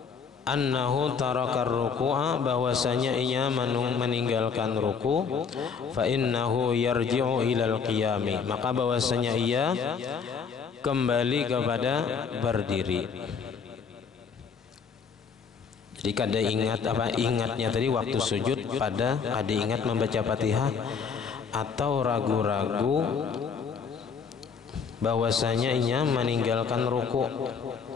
annahu tarakar ruku'a, bahwasanya ia meninggalkan ruku, fa innahu yarji'u ilal qiyami, maka bahwasanya ia kembali kepada berdiri. Jadi kada ingat ingatnya tadi waktu sujud pada kada ingat membaca Fatihah, atau ragu-ragu bahwasanya ia meninggalkan ruku.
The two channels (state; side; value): quieter; right; 6.1 dB